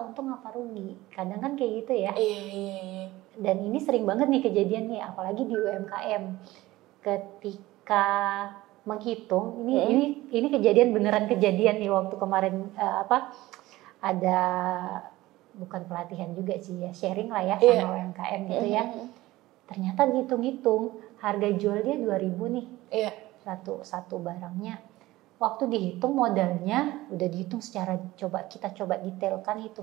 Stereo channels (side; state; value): left; quieter; 17.8 dB